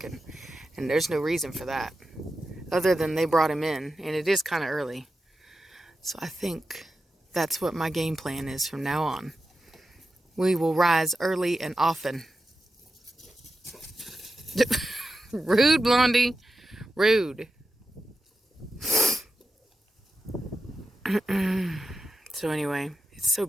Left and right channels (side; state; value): both; normal; correlation 0.91